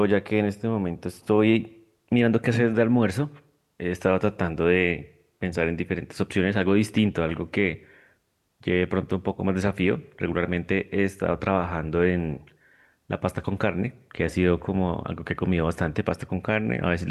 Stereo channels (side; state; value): both; identical; correlation 1.00